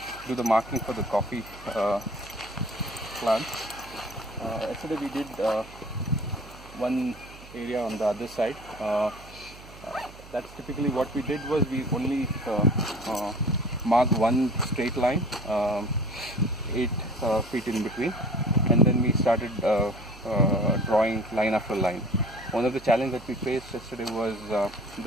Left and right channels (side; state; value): right; noise; hum, 19 dB below the sound